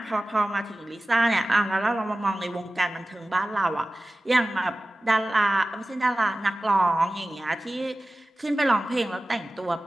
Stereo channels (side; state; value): both; normal; correlation 0.96